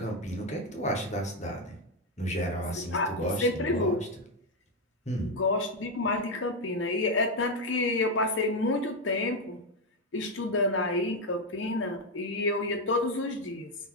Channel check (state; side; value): normal; both; correlation 0.06